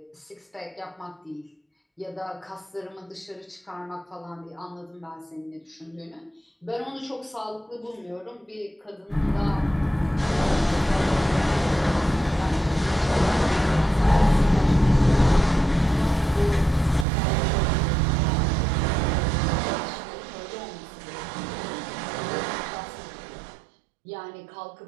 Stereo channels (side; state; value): left; drops out; at 17.1 s